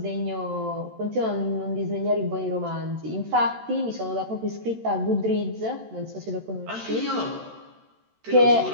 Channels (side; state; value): left; late; 13 ms